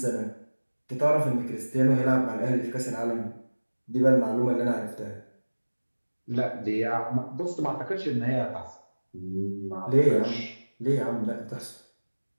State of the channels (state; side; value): inverted; both; correlation -1.00